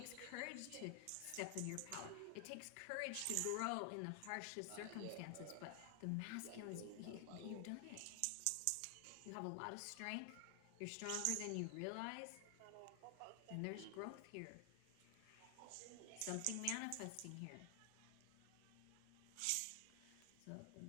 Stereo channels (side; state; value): both; different; correlation 0.00